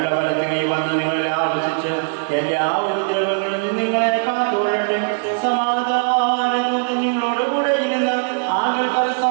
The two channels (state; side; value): silent; left; digital silence